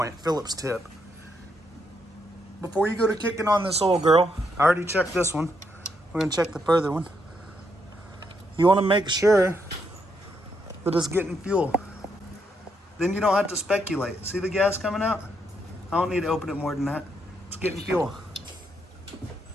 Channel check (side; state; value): both; normal; correlation 0.78